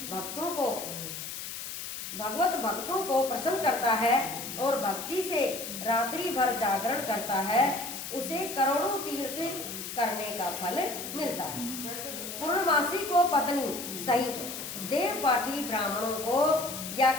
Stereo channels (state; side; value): noise; left; hiss, 7 dB below the sound